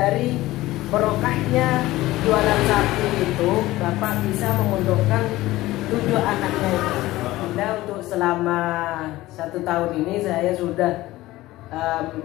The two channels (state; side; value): quieter; right; 17.4 dB